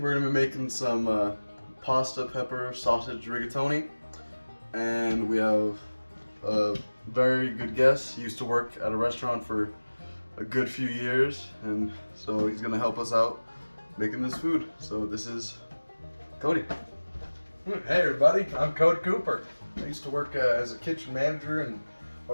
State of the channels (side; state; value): both; inverted; correlation -1.00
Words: going to be making some pasta, pepper, sausage rigatoni. And we have a very good guest. He used to work at a restaurant for a good few years, and so he's going to help us out making this food. So this is Cody. Hey everybody, I'm Cody Cooper. I used to work as a kitchen manager in a